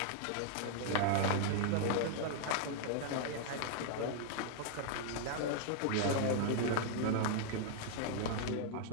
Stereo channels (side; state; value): both; different; correlation 0.00